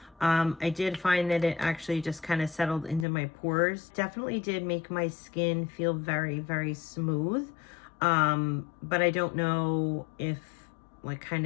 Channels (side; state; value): right; drops out; at 3.1 s